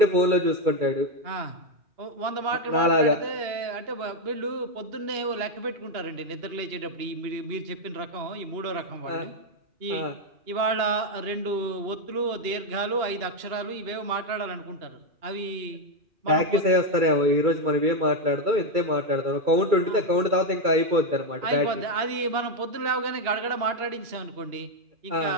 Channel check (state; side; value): late; left; 2.8 ms